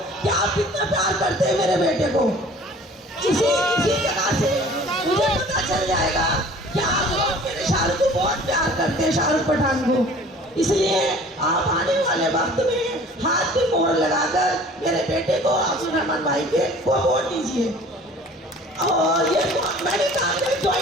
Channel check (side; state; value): both; normal; correlation 0.48